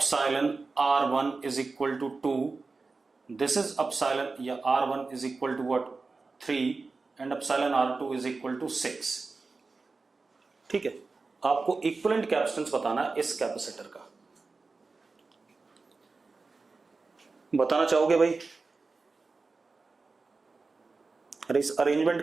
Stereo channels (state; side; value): quieter; left; 4.0 dB